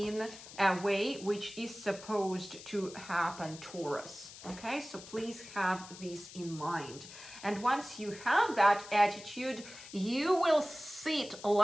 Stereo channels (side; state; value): left; noise; hiss, 15 dB below the sound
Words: a way which is supposed to happen, Taurus. Okay, so please have this in mind. And once you have that attitude, you will sit